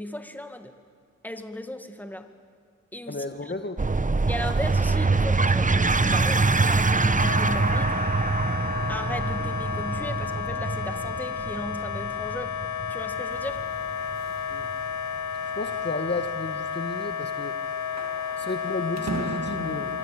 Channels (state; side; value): normal; both; correlation 0.40